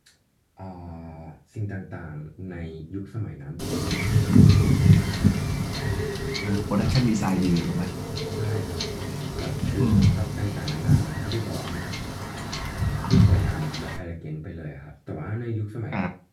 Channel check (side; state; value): both; identical; correlation 1.00